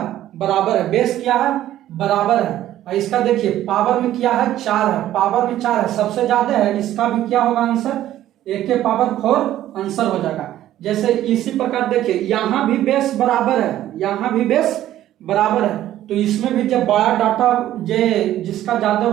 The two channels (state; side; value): quieter; left; 13.0 dB